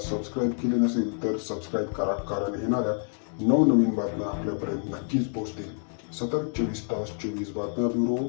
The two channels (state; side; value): silent; right; 60 dB below the other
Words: केले नसेल तर सबस्क्राईब करा, कारण येणाऱ्या नवनवीन बातम्या आपल्यापर्यंत नक्कीच पोहोचतील। सतत 24 तास 24 बातम्या ब्युरो,